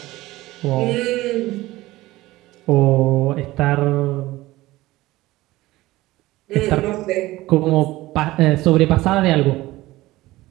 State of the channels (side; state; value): left; quieter; 18.0 dB